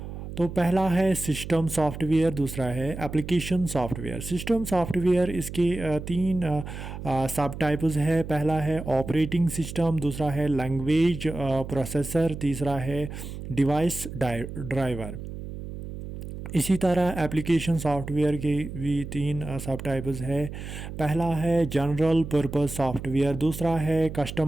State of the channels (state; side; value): noise; right; hum, 9 dB below the sound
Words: तो पहला है सिस्टम सॉफ्टवेयर, दूसरा है एप्लीकेशन सॉफ्टवेयर। सिस्टम सॉफ्टवेयर इसके तीन सब टाइप्स है। पहला है ऑपरेटिंग सिस्टम, दूसरा है लैंग्वेज प्रोसेसर, तीसरा है डिवाइस ड्राइवर। इसी तरह एप्लीकेशन सॉफ्टवेयर के भी तीन सब टाइप्स है। पहला है जनरल पर्पस सॉफ्टवेयर, दूसरा है